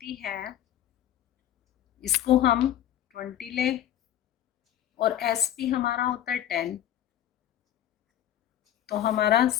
है, इसको हम 20 लें और एसपी हमारा होता है 10, तो हमारा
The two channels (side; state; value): right; quieter; 11.4 dB